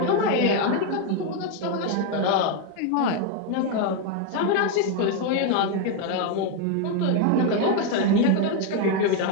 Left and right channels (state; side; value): different; both; correlation 0.01